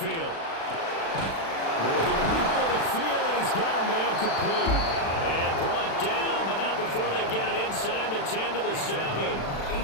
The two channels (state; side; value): late; right; 36 ms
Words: Work in the middle of the field, and he's got a man complete. And brought down, but not before they get it inside the 10 to the